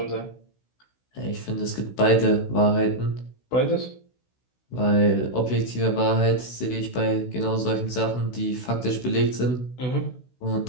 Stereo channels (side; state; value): right; late; 16 ms